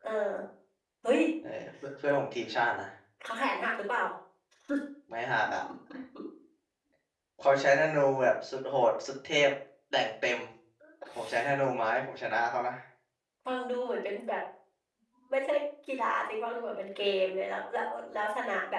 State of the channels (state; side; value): identical; both; correlation 1.00